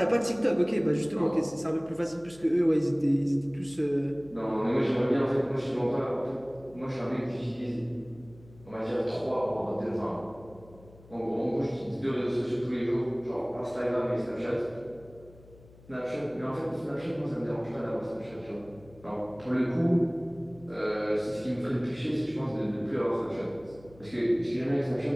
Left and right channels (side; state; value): left; noise; hum, 23 dB below the sound